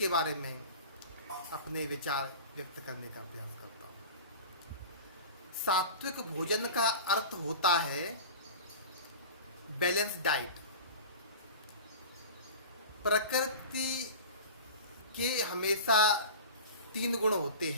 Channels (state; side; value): inverted; both; correlation -0.35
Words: बारे में अपने विचार व्यक्त करने का प्रयास करता हूँ। सात्विक भोजन का अर्थ होता है बैलेंस डाइट। प्रकृति के हमेशा तीन गुण होते